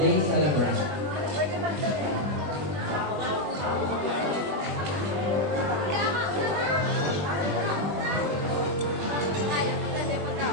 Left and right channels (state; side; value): late; left; 21 ms